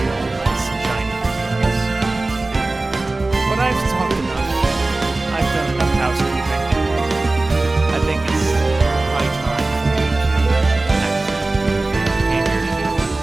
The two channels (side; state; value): left; quieter; 3.1 dB